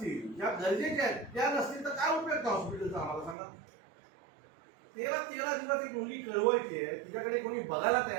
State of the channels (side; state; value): left; drops out; at 3.4 s